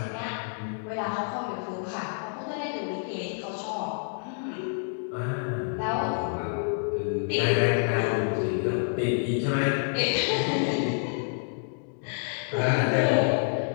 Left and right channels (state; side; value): silent; right; digital silence